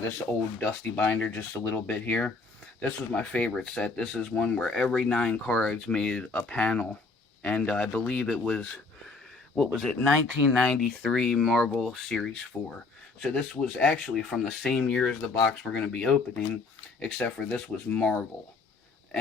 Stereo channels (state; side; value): quieter; right; 3.9 dB